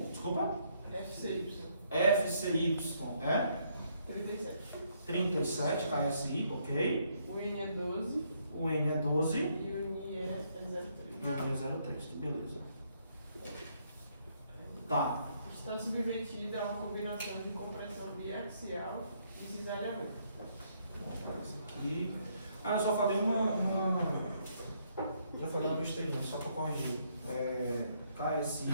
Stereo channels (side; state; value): both; inverted; correlation -0.71